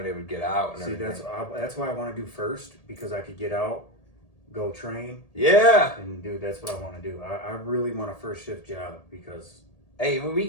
they would get out. And See, everything. that's why I want to do first, because I could get out, go train. Yeah. And dude, that's what I want to do. I really want a first shift job because.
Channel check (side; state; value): right; late; 1.8 ms